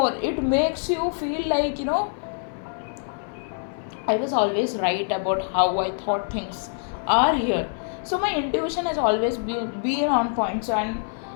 It makes you feel like, I was always right about how I thought things are here. So my intuition has always been on point. So, and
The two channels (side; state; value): right; silent; 62 dB below the other